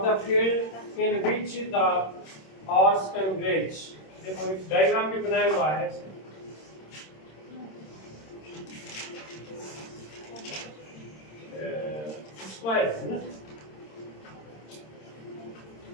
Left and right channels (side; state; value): right; late; 26 ms